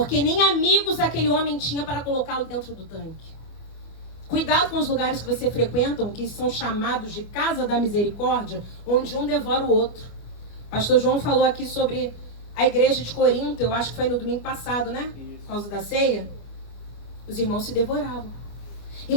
nem amigos aquele homem tinha para colocá-lo dentro do tanque. Cuidado com os lugares que você frequenta, que são chamados de casa da misericórdia, onde um devora o outro. Pastor João falou aqui sobre a igreja de Corinto, eu acho que foi no domingo passado, né? Por causa da ceia. Os irmãos se devoravam.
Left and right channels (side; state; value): right; late; 25 ms